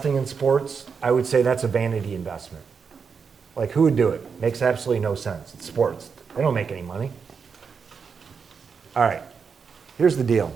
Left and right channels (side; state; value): left; quieter; 5.9 dB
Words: in sports, I would say that's a vanity investment. Like, who would do it? Makes absolutely no sense. It's sports. They don't make any money. All right, here's the deal.